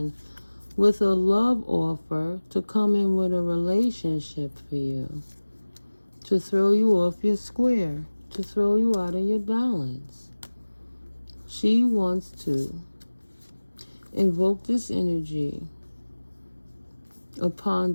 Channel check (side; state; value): both; inverted; correlation -1.00